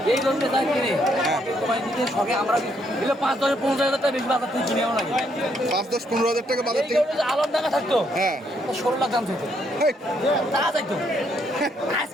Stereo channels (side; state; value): both; normal; correlation 0.73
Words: এই গরুটা যা কিনে হ্যাঁ তোমায় দিতে সবে আমরা এলে 5-10-15,000 টাকা বেশি বাজার থেকে কিনেও লাগে 5-10-15,000 টাকা বাজার থেকে আলম টাকা থাকতো হ্যাঁ 16 লাখ দাম থাকতো তা যাইতো